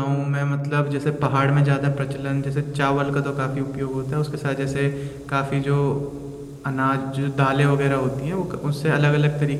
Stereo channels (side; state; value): both; identical; correlation 1.00